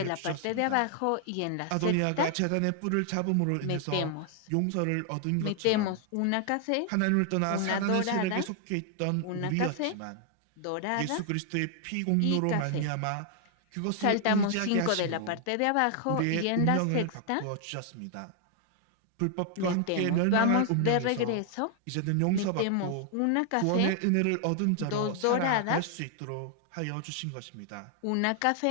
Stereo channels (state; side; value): different; both; correlation 0.00